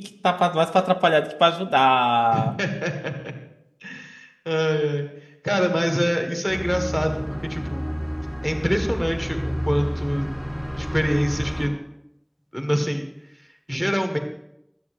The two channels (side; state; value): both; identical; correlation 1.00